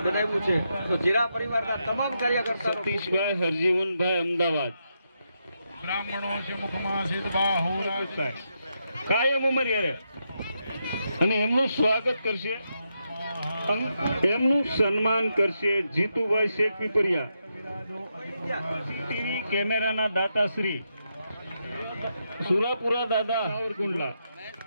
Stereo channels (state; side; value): inverted; both; correlation -0.83